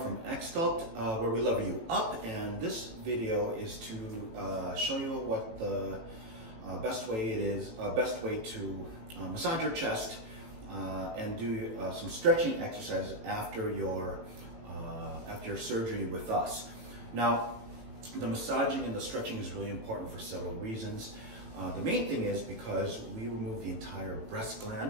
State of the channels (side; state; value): left; late; 18 ms